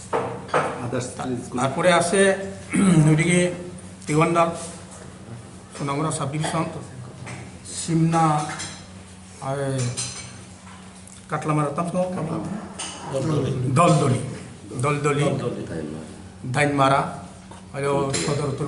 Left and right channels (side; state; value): both; identical; correlation 1.00